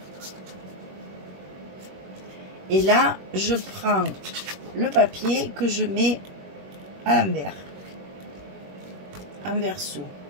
Et là, je prends le papier que je mets à l'envers, en verso.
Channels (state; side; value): late; left; 21 ms